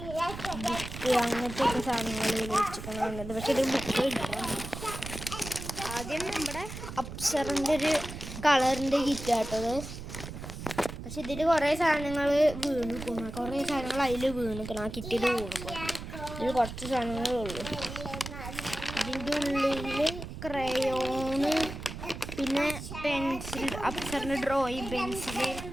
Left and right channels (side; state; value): right; noise; rumble, 9 dB below the sound